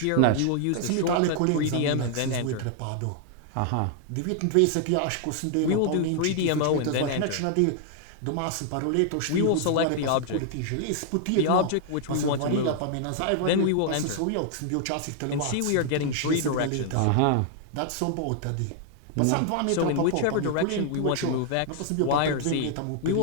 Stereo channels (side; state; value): both; different; correlation 0.00